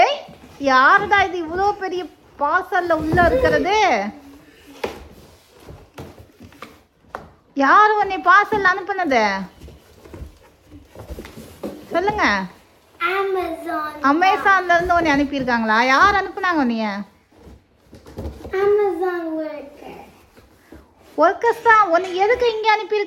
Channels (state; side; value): identical; both; correlation 1.00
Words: யாருடா இது இவ்வளோ பெரிய பார்சல்ல உள்ள இருக்கிறது? யாரு உன்னை பார்சல் அனுப்புனது? சொல்லுங்க. அமேசான்ல இருந்து உன்னை அனுப்பியிருக்காங்களா? யார் அனுப்புனாங்க உன்னைய? ஒர்க்கர்ஸ் தான். உன்னை எதுக்கு இங்கே